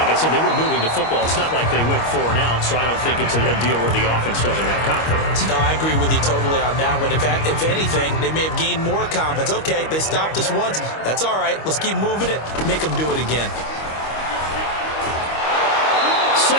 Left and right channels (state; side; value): late; right; 25 ms